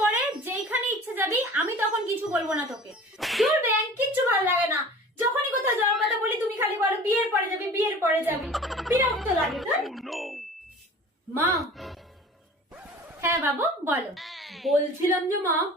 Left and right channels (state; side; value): normal; both; correlation 0.42